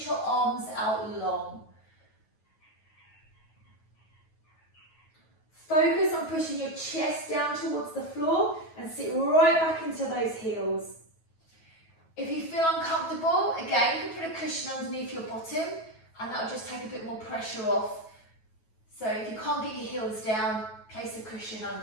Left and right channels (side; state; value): right; late; 9.2 ms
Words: your arms out long. Focus on pushing your chest down towards the floor and sit right back into those heels. If you feel uncomfortable, again, you can put a cushion underneath your bottom and that'll just take a bit more pressure off. So if you can't get your heels down, place a cushion